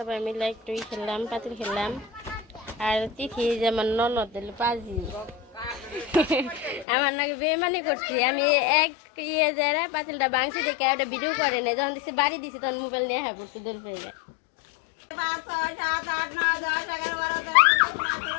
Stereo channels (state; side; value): drops out; right; at 6.9 s